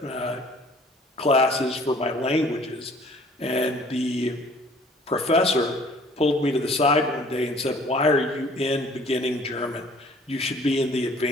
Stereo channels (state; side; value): normal; both; correlation 0.54